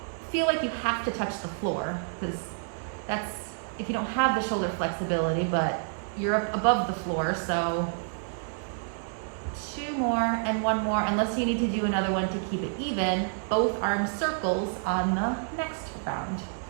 feel like you have to touch the floor, because that's if you don't have the shoulder flexibility, but you're up above the floor. So 2 more and 1 more, unless you need to do another one to keep it even. Both arms circles on the next round.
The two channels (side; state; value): left; silent; 59 dB below the other